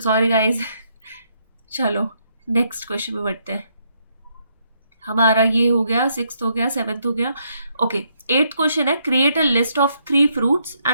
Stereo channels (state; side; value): inverted; both; correlation -0.75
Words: गाइज। चलो नेक्स्ट क्वेश्चन में बढ़ते हैं। हमारा ये हो गया, 6th हो गया, 7th हो गया। ओके, 8th क्वेश्चन है create a list of 3 fruits